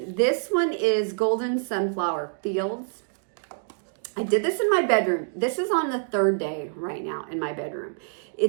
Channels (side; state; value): left; silent; digital silence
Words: this one is Golden Sunflower Fields. I did this in my bedroom. This is on the third day right now in my bedroom.